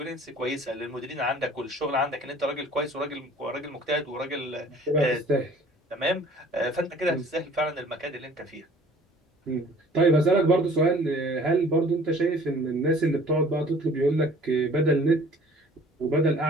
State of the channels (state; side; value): normal; both; correlation 0.51